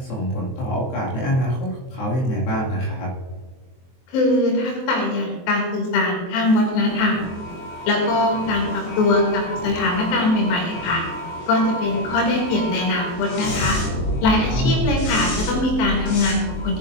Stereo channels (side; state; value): right; late; 23 ms